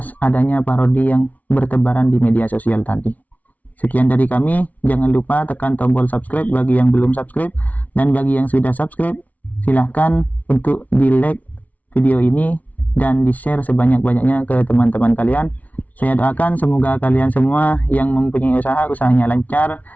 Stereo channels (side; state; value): right; late; 0.072 ms